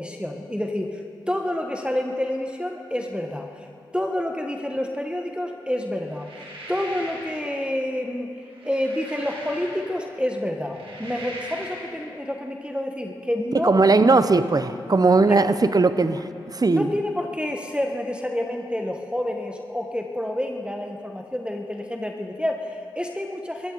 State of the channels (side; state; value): both; normal; correlation 0.83